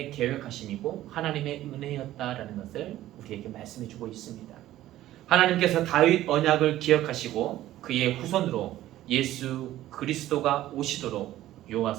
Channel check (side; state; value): left; quieter; 14.2 dB